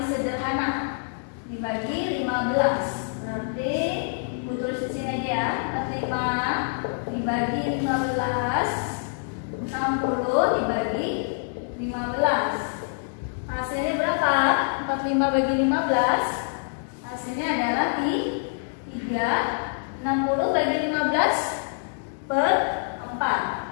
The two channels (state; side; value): silent; right; digital silence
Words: sederhana. Dibagi 15. Berarti Bu tulis di sini aja ya. 45 dibagi 15. 60 dibagi 15. Hasilnya berapa? 45 bagi 15. Hasilnya adalah 3. 60 bagi 15 per